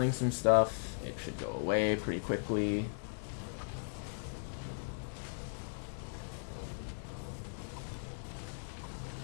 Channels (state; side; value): silent; right; digital silence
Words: some stuff, it should go away pretty quickly.